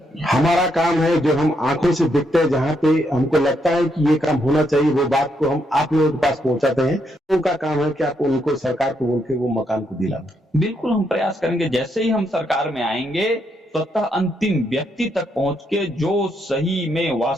है। हमारा काम है जो हम आंखों से देखते हैं, जहां पे हमको लगता है कि ये काम होना चाहिए, वो बात को हम आप लोगों के पास पहुंचाते हैं। उनका काम है कि आप उनको सरकार को बोल के वो मकान को दिलाएं। बिल्कुल हम प्रयास करेंगे। जैसे ही हम सरकार में आएंगे स्वतः अंतिम व्यक्ति तक पहुंच के जो सही में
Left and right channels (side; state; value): both; normal; correlation 0.77